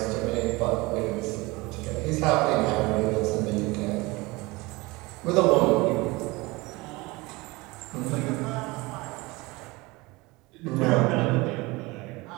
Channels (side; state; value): left; quieter; 23.1 dB